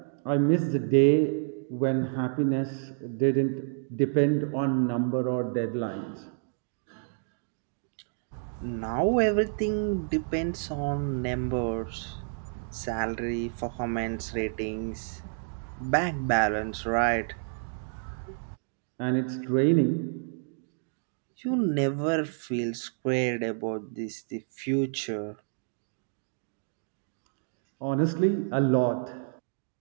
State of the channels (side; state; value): left; silent; digital silence